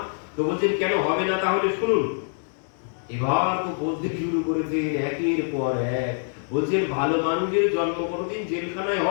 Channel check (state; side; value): silent; right; digital silence